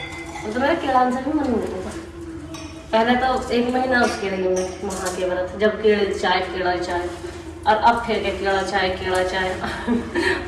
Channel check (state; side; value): identical; both; correlation 1.00